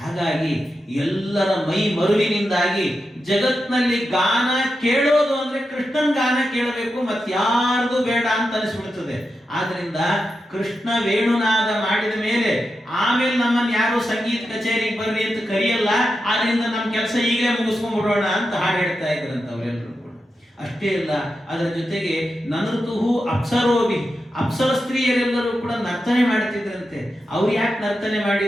ಹಾಗಾಗಿ ಎಲ್ಲರ ಮೈ ಮರುವಿನಿಂದಾಗಿ ಜಗತ್ನಲ್ಲಿ ಗಾನ ಕೇಳೋದು ಅಂದ್ರೆ ಕೃಷ್ಣನ್ ಗಾನ ಕೇಳಬೇಕು, ಮತ್ತಾರ್ದು ಬೇಡ ಅಂತ ಅನಿಸ್ಬಿಡ್ತದೆ. ಆದ್ರಿಂದ ಕೃಷ್ಣ ವೇಣುನಾದ ಮಾಡಿದ ಮೇಲೆ ಆಮೇಲೆ ನಮ್ಮನ್ನು ಯಾರು ಸಂಗೀತ ಕಚೇರಿಗೆ ಬರ್ರಿ ಅಂತ ಕರೆಯಲ್ಲ. ಆದ್ರಿಂದ ನಮ್ಮ ಕೆಲಸ ಈಗಲೇ ಮುಗಿಸ್ಕೊಂಡ್ಬಿಡೋಣ ಅಂತ ಹಾಡು ಹೇಳ್ತಾ ಇದ್ರಂತ ಅವರೆಲ್ಲರೂ ಕೂಡ. ಅಷ್ಟೇ ಅಲ್ಲ, ಅದರ ಜೊತೆಗೆ ನನೃತುಹು ಅಪ್ಸರೋಭಿ, ಅಪ್ಸರ ಸ್ತ್ರೀಯರೆಲ್ಲರೂ ಕೂಡ ನರ್ತನೆ ಮಾಡ್ತಿದ್ರಂತೆ. ಅವ್ರು ಯಾಕೆ ನರ್ತನೆ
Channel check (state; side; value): normal; both; correlation 0.89